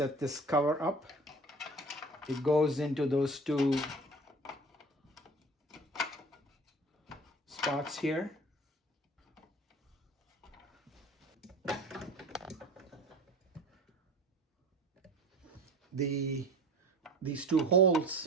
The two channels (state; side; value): normal; both; correlation 0.40